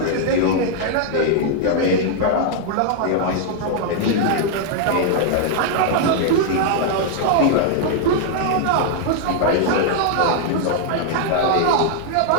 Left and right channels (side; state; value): both; different; correlation 0.00